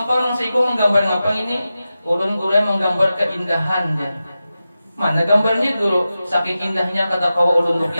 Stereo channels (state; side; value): inverted; both; correlation -0.93